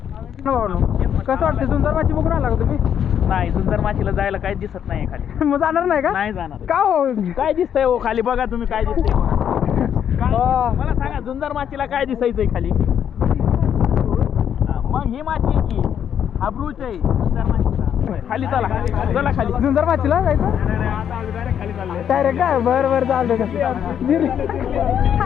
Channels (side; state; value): right; quieter; 8.9 dB